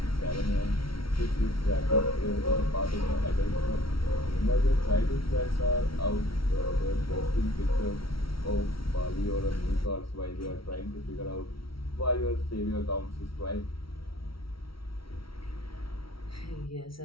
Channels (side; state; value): right; late; 0.75 ms